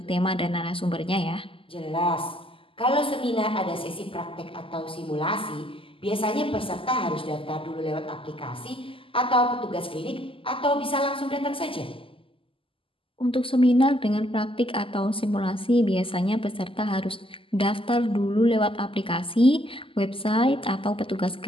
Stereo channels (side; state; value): right; late; 0.26 ms